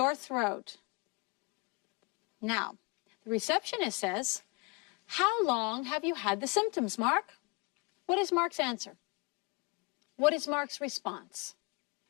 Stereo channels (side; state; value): right; quieter; 29.3 dB